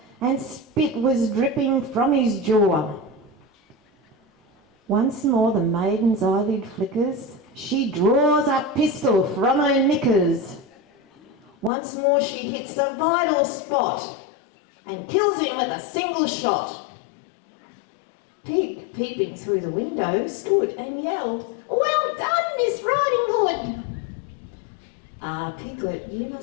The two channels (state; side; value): drops out; right; at 11.7 s